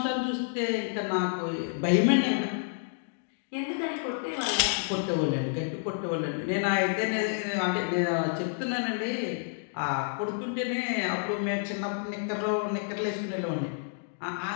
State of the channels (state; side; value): silent; right; digital silence